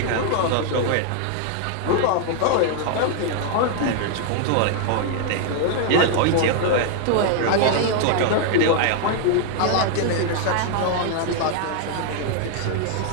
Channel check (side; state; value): both; different; correlation 0.00